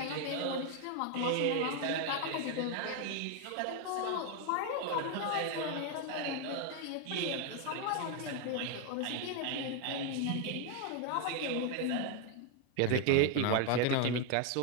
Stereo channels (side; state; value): both; different; correlation 0.01